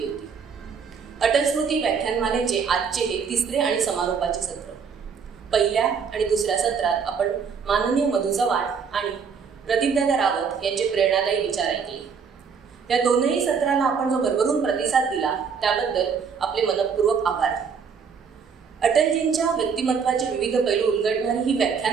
होती। अटल स्मृती व्याख्यानमालेचे आजचे हे तिसरे आणि समारोपाचे सत्र। पहिल्या आणि दुसऱ्या सत्रात आपण माननीय मधु चव्हाण आणि प्रदीपदादा रावत यांचे प्रेरणादायी विचार ऐकले। या दोनही सत्राला आपण जो भरभरून प्रतिसाद दिला त्याबद्दल आपले मनपूर्वक आभार। अटलजींच्या व्यक्तिमत्वाचे विविध पैलू उलगडणारी ही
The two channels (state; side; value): quieter; left; 6.1 dB